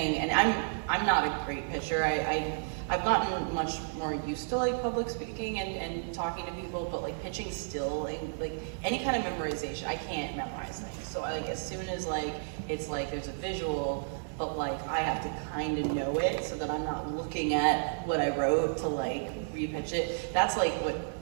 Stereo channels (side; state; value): left; silent; 56 dB below the other